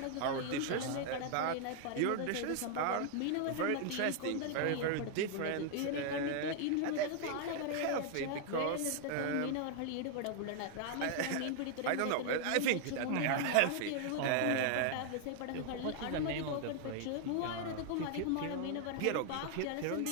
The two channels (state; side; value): different; both; correlation 0.00